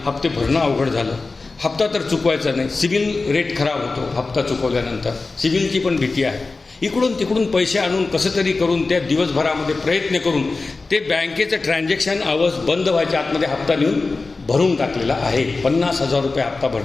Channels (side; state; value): right; quieter; 3.8 dB